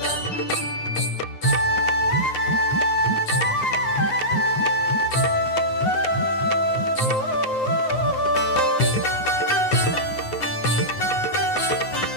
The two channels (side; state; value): right; late; 9.6 ms